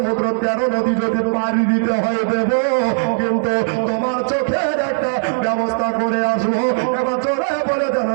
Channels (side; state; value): left; silent; digital silence